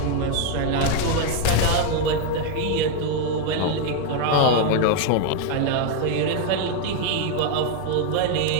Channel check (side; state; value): both; different; correlation 0.01